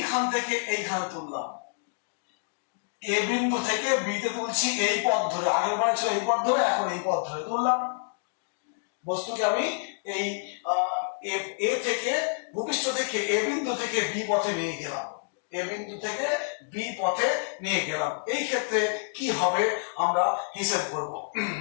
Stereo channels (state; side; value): silent; right; digital silence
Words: থেকে এইখানে তুললাম, এ বিন্দু থেকে বিতে তুলছি এই পথ ধরে, আগের বার ছিল এই পথ ধরে, এখন এই পথ ধরে তুললাম বস্তুকে আমি এই এ থেকে ভূপৃষ্ঠ থেকে এ বিন্দু থেকে বি পথে নিয়ে গেলাম, এই ক্ষেত্রে কি হবে আমরা হিসাব করব।